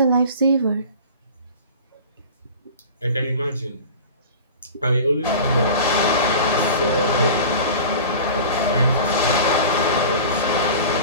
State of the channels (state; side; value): inverted; both; correlation -0.37